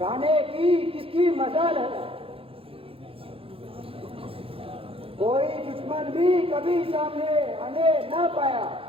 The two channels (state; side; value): late; left; 0.27 ms